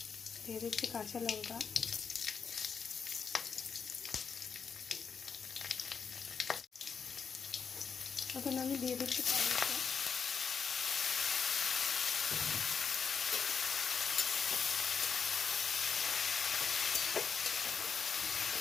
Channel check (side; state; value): right; quieter; 6.1 dB